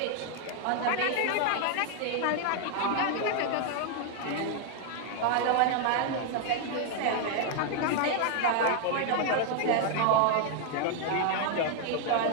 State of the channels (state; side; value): different; both; correlation 0.00